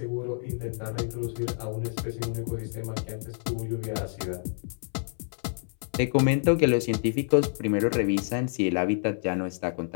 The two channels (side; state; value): right; silent; 59 dB below the other